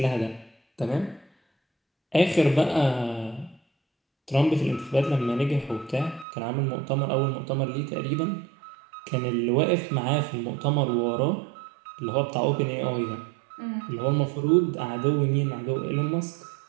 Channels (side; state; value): left; drops out; at 6.2 s